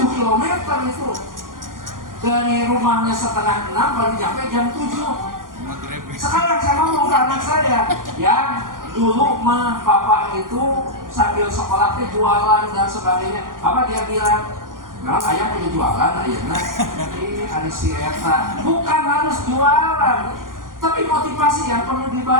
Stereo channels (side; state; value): left; late; 0.90 ms